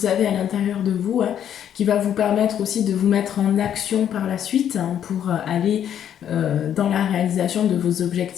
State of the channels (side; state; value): right; quieter; 9.7 dB